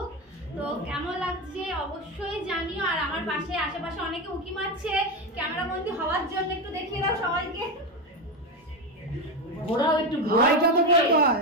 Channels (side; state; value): both; normal; correlation 0.14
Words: তো কেমন লাগছে অবশ্যই জানিও। আর আমার পাশে আশেপাশে অনেকে উকি মারছে ক্যামেরা বন্দি হওয়ার জন্য, একটু দেখিয়ে দাও সবাইকে।